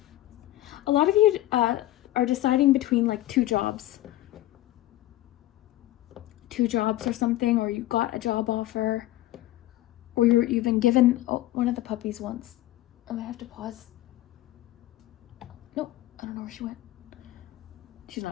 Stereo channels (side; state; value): right; quieter; 15.3 dB